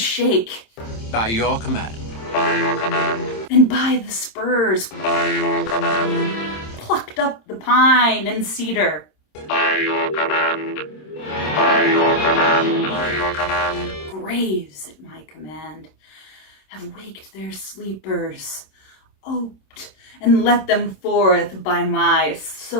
By your command. By your command. And by the spurs. By your command. Plucked up the pine and cedar. By your command. By your command. By your command. Graves at my command have waked their sleepers, oped and let them forth by my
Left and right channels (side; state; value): right; late; 26 ms